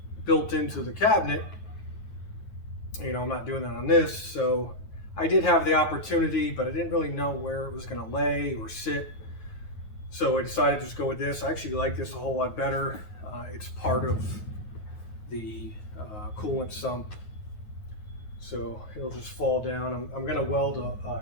built into the cabinet, you know, I'm not doing that on this. So I did have the opportunity, but I didn't really know where it was going to lay or sit. So I decided to just go with this. I actually like this a whole lot better. It's part of the coolant sump, so it'll just fall down. I'm going to weld a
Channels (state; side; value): late; right; 9.4 ms